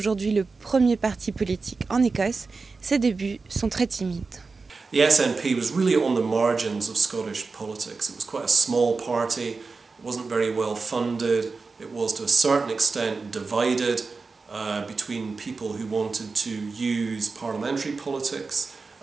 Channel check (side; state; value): left; quieter; 4.2 dB